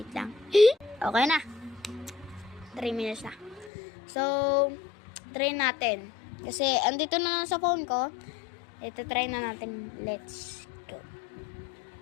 lang. Okay na. 3 minutes na. So, try natin. Kasi, andito na lang sa phone ko. Ito, try na natin. Let's go.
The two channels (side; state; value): right; drops out; at 3.7 s